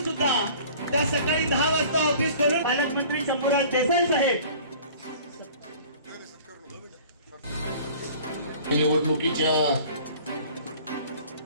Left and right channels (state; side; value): inverted; both; correlation -0.47